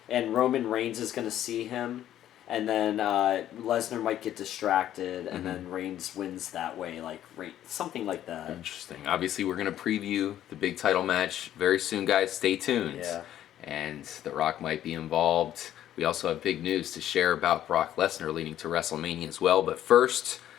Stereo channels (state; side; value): quieter; right; 11.8 dB